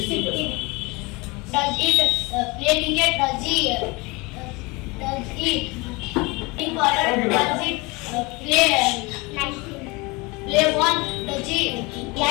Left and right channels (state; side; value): quieter; right; 25.5 dB